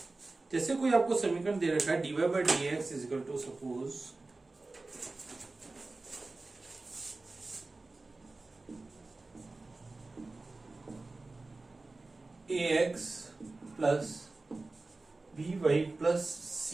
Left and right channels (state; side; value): quieter; left; 3.3 dB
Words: जैसे कोई आपको समीकरण दे रखा है dy by dx is equal to suppose ax plus by plus